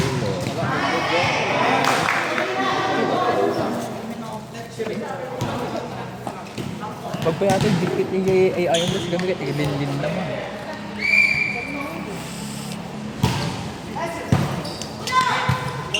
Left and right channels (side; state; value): both; identical; correlation 1.00